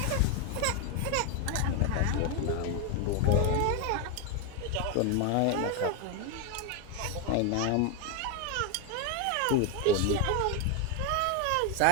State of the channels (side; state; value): both; different; correlation 0.01